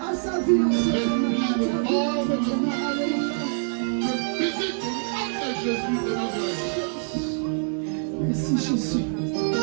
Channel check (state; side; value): silent; left; digital silence